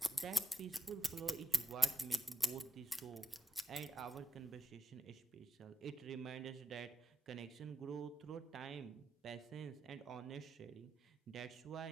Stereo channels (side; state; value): both; normal; correlation 0.90